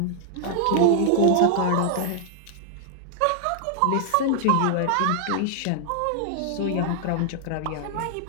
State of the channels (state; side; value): different; both; correlation 0.00